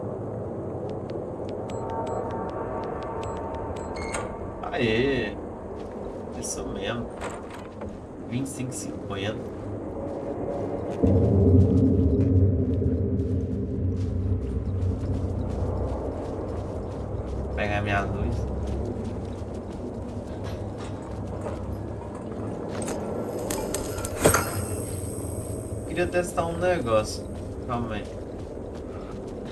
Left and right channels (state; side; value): identical; both; correlation 1.00